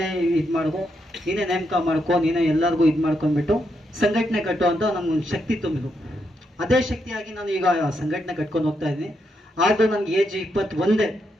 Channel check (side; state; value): both; normal; correlation 0.80